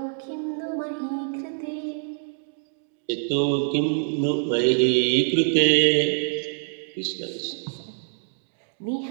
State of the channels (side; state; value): left; silent; digital silence